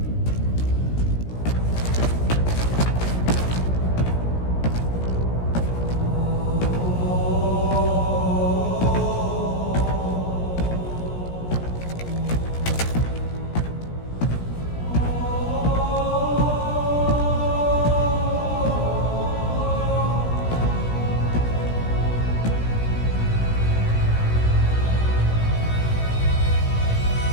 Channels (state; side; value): late; right; 17 ms